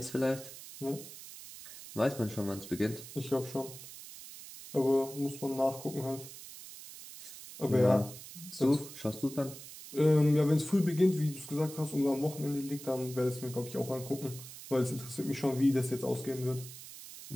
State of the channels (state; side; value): noise; right; hiss, 14 dB below the sound